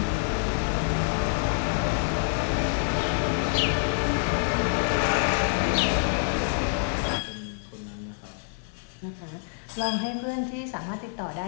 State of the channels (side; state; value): right; silent; 60 dB below the other